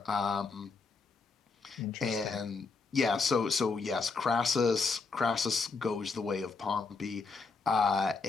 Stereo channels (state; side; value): quieter; right; 4.4 dB